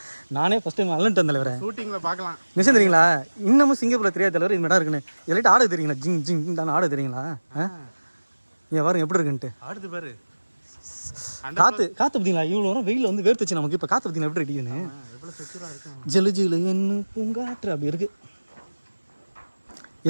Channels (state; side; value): inverted; both; correlation -1.00